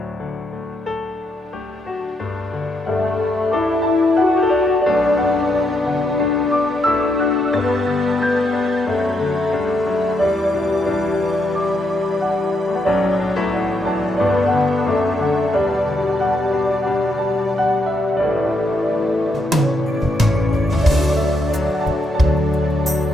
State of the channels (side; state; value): both; normal; correlation 0.79